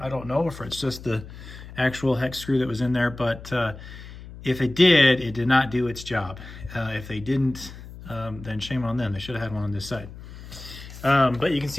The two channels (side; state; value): left; noise; hum, 15 dB below the sound